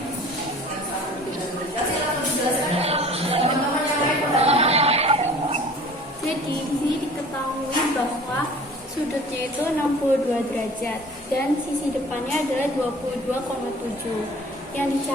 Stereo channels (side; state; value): both; normal; correlation 0.46